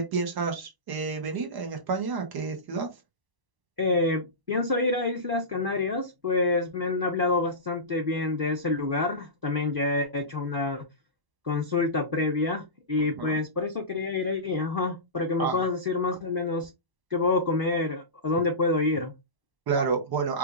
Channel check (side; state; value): left; late; 1.0 ms